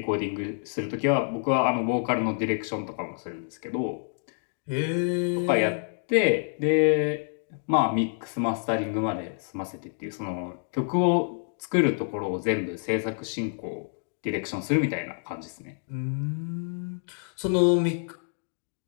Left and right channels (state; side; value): silent; right; digital silence